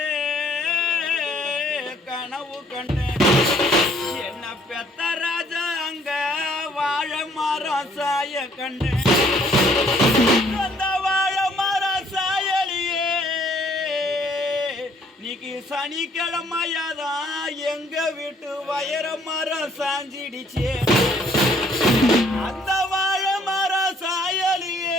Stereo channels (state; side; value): normal; both; correlation 0.62